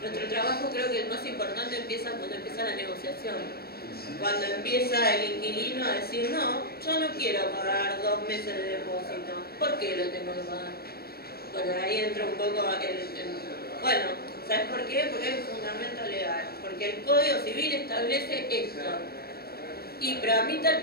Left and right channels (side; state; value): right; late; 0.45 ms